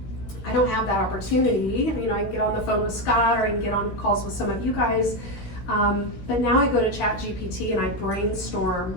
I don't have that opportunity. You know, I can get on the phone with Scott, or I can get on calls with some of you guys. But now I go to ChatGPT and I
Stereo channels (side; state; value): right; late; 16 ms